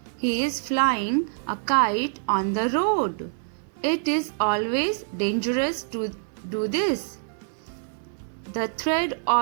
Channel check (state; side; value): silent; left; 61 dB below the other